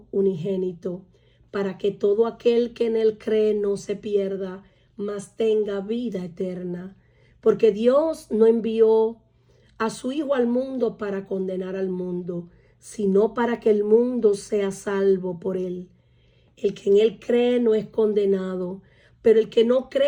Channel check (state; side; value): identical; both; correlation 1.00